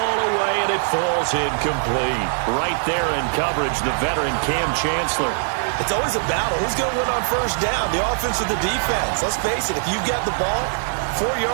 away, and it falls incomplete. Right there in coverage, the veteran Cam Chancellor. It's always a battle. Who's going to win on 1st down, the offense or the defense? Let's face it, if you've got the ball, 4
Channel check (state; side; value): silent; left; digital silence